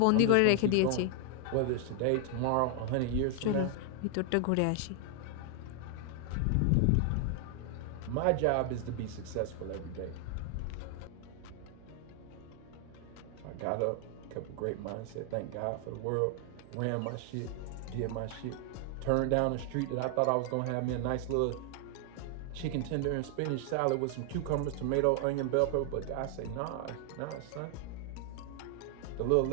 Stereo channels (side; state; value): both; different; correlation 0.00